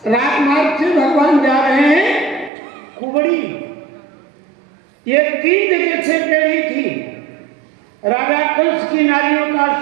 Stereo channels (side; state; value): left; drops out; at 2.5 s